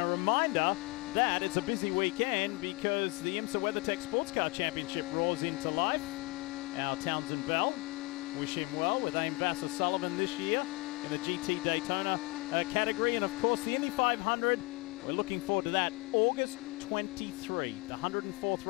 a reminder that it's a busy weekend because the IMSA WeatherTech Sports Car Championship roars into life. Our Townsend Bell, wish him well with Aim Vassar Sullivan this year in the GT Daytona category. And of course, the Indy 500, we're looking forward to that. August 23, the 104th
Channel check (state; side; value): quieter; right; 24.2 dB